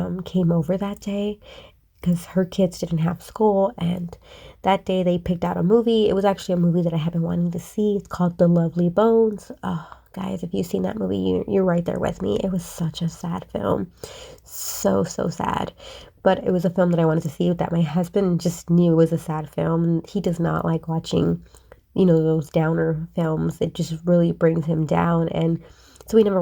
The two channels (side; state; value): both; identical; correlation 1.00